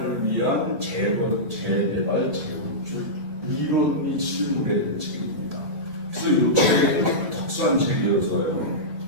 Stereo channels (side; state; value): left; late; 1.9 ms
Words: 위한 재개발, 재건축 이론이 실무된 책입니다. 그래서 이 책은 특수한 책이어서요.